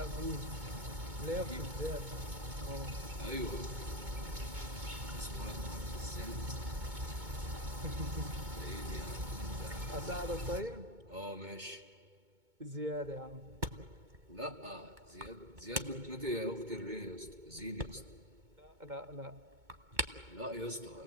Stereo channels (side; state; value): left; late; 2.2 ms